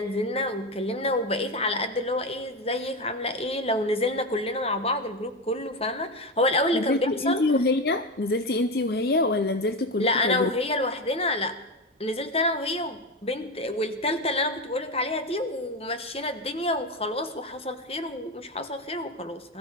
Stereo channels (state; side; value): normal; both; correlation 0.17